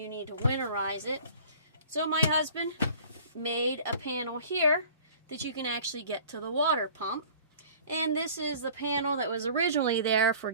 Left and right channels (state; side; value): inverted; both; correlation -0.47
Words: need to winterize it. So my husband made a panel here that you can actually get to the water pump. And this is the panel that was originally there for